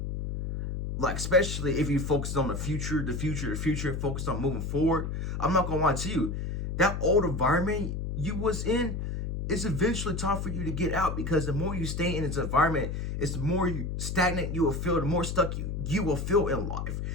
like especially if you focus on the future, focus on moving forward, I'm not gonna lie to you, that old environment you was in, it's eventually time for you to get out, because the more you stay in this environment, it's the more stagnant you will feel, the more stuck you will feel in life.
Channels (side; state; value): left; noise; hum, 3 dB below the sound